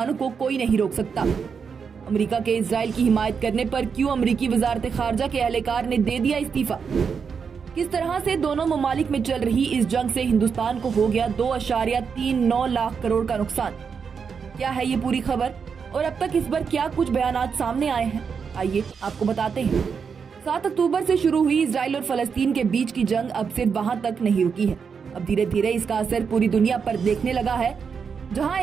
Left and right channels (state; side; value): quieter; left; 6.1 dB